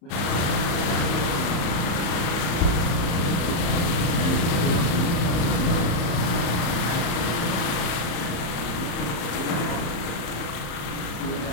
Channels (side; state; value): right; late; 34 ms